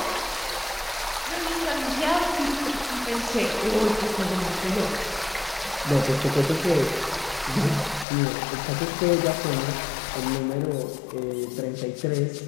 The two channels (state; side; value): drops out; right; at 8.1 s